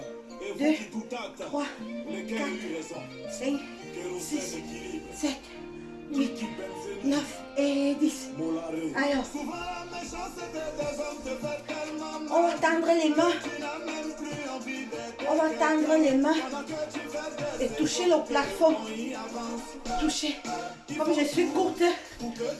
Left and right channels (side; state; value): both; identical; correlation 1.00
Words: 2, 3, 4, 5, 6, 7, 8, 9 et 10. Alors, on va tendre les mains. On va tendre les mains et toucher le plafond. Toucher. Comme je suis courte, je